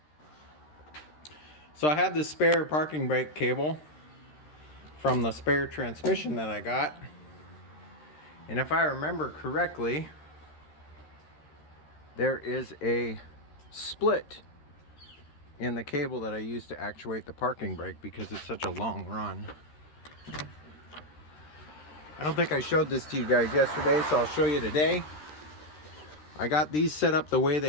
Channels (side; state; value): right; late; 13 ms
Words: So I have this spare parking brake cable from the spare transmission that I got. And if I remember correctly, there is a split in the cable that I use to actuate the parking brake because it's such a long run. I don't think I showed this to you guys yesterday, so I'll show you today. I got these set up the way